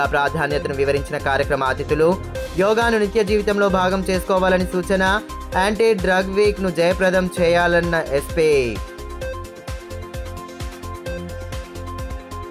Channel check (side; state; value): both; identical; correlation 1.00